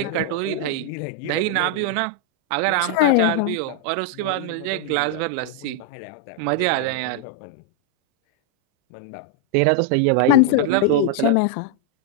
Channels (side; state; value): both; different; correlation 0.00